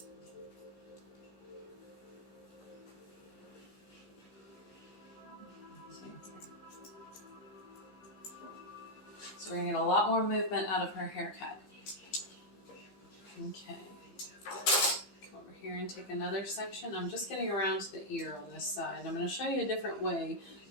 So we're going to get a lot more movement out of her haircut. Okay. Come over here and take another section. I'm just getting around to the ear on this side. I'm going to show you a different way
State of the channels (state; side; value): late; right; 11 ms